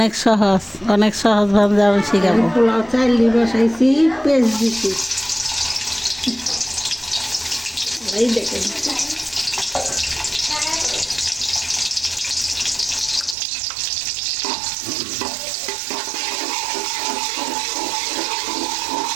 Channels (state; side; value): drops out; left; at 13.4 s